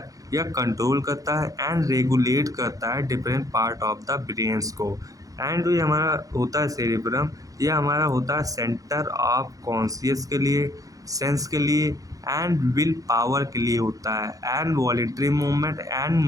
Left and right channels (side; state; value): left; late; 0.17 ms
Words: यह कंट्रोल करता है एंड रेगुलेट करता है different part of the brains को। एंड जो ये हमारा होता है सेरिब्रम यह हमारा होता है सेंटर ऑफ कॉन्शियस के लिए, सेंस के लिए एंड विल पावर के लिए होता है and voluntary movement and